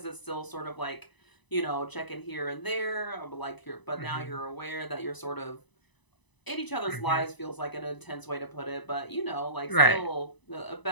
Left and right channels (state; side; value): late; right; 1.0 ms